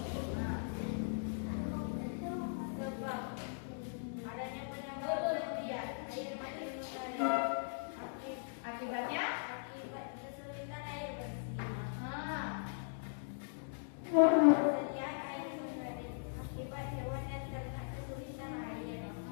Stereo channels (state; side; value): silent; right; digital silence